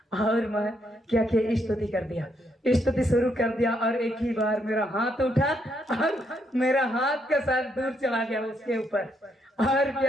और मैं क्या किया, स्तुति कर दिया, स्तुति शुरू कर दिया और एक ही बार मेरा हाथ उठा और मेरा हाथ का साथ दूर चला गया उसके ऊपर। और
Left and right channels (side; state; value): both; normal; correlation 0.75